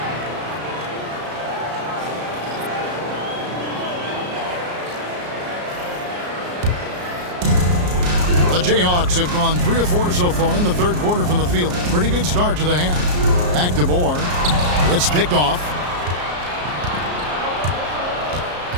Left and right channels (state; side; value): late; left; 34 ms